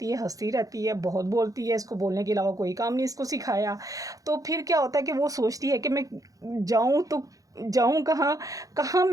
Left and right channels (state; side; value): late; left; 0.17 ms